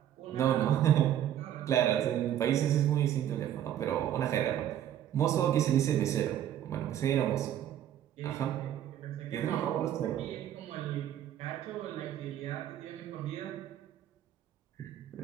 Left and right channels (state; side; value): quieter; left; 11.0 dB